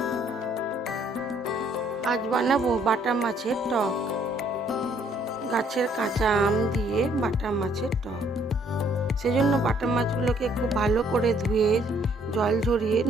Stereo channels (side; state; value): both; normal; correlation 0.65